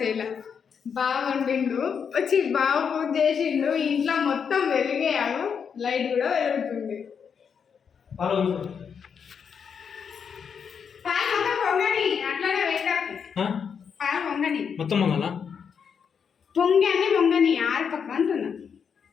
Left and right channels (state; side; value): quieter; right; 6.8 dB